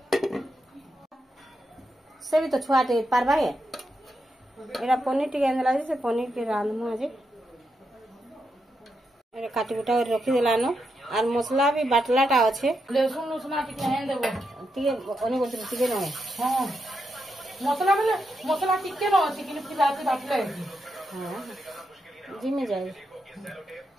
से भी तो छुआटे पारबा गे एरा पनीर टिके आनला से पनीर के रांधमु आज एरा काटी कुटा कर रखी देलानो आर मसला भी बाटलाटा अच्छे लहसुन लसुन टिके हेन देबो टिके ओने गोटे टिके नहे हां मसला टिके न अछि कि फिर रात बाटले हां जी में जाए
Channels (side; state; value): both; normal; correlation 0.84